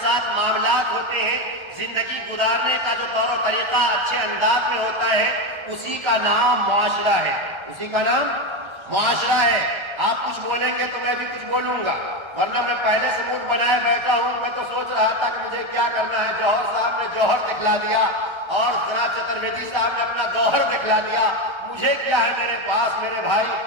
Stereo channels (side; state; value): left; late; 1.3 ms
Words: ساتھ معاملات ہوتے ہیں، زندگی گزارنے کا جو طور و طریقہ اچھے انداز میں ہوتا ہے، اسی کا نام معاشرہ ہے، اسی کا نام معاشرہ ہے۔ آپ کچھ بولیں گے تو میں بھی کچھ بولوں گا، ورنہ میں پہلے سے منہ بنائے بیٹھا ہوں۔ میں تو سوچ رہا تھا کہ مجھے کیا کرنا ہے، جوہر صاحب نے جوہر دکھلا دیا اور جناب چترویدی صاحب نے اپنا گوہر دکھلا دیا، مجھے کیا ہے میرے پاس میرے بھائی،